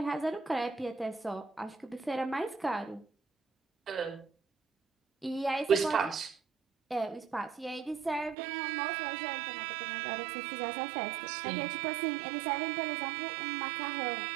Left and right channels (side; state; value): left; drops out; at 8.3 s